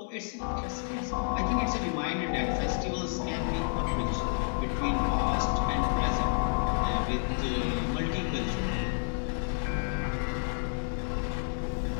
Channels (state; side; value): silent; right; 58 dB below the other